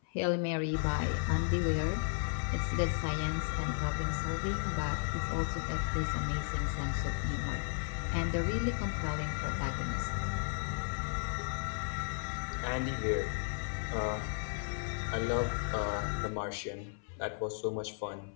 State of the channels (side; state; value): right; silent; 55 dB below the other